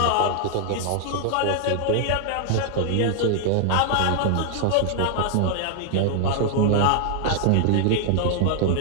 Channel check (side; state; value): both; different; correlation 0.00